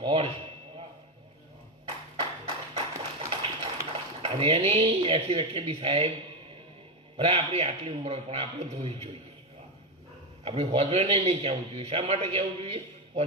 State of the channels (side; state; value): both; normal; correlation 0.10